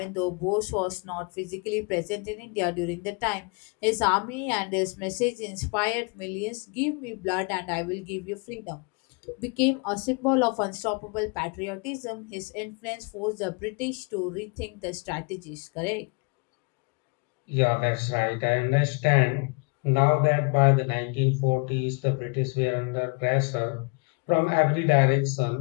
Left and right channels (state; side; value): quieter; right; 32.7 dB